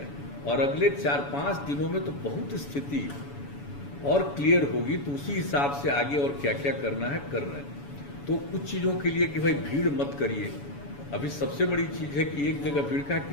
और अगले 4-5 दिनों में तो बहुत स्थिति और क्लियर होगी, तो उसी हिसाब से आगे और क्या क्या करना है कर रहे हैं। तो कुछ चीज़ों के लिए कि भाई भीड़ मत करिए, अभी सबसे बड़ी चीज़ है कि एक जगह भीड़ का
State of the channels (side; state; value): right; late; 7.0 ms